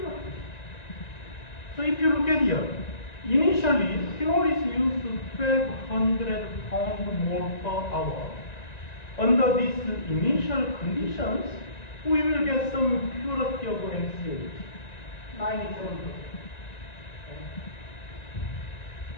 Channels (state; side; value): late; right; 1.9 ms